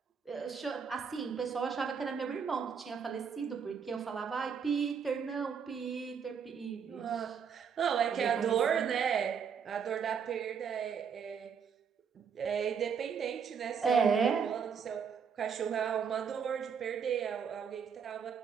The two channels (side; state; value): left; quieter; 6.8 dB